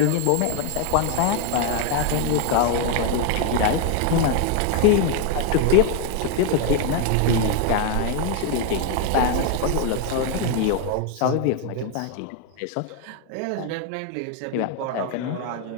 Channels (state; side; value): different; both; correlation 0.01